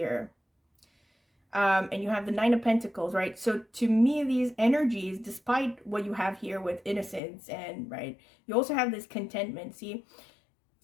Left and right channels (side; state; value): right; drops out; at 7.2 s